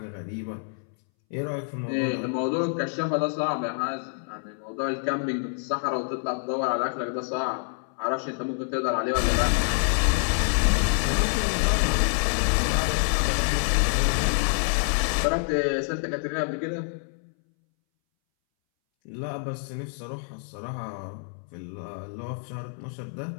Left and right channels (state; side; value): silent; right; 60 dB below the other